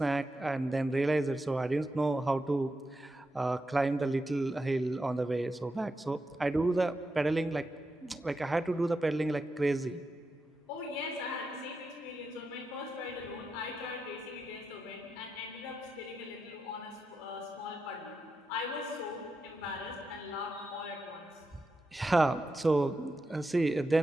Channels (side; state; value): both; normal; correlation 0.87